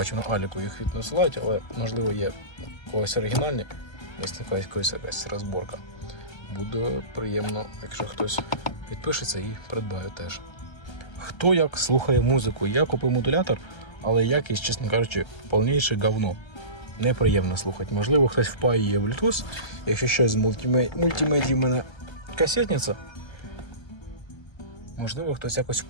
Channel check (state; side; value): late; right; 1.3 ms